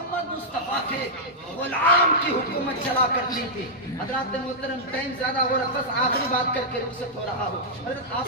مصطفیٰ کے غلام کی حکومت چلا کرتی تھی. حضرات محترم, ٹائم زیادہ ہو رہا, بس آخری بات کر کے رخصت ہو رہا ہو. حضرت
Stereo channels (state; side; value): normal; both; correlation -0.08